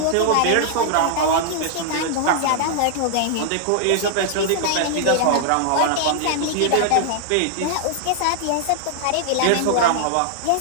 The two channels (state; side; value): different; both; correlation -0.01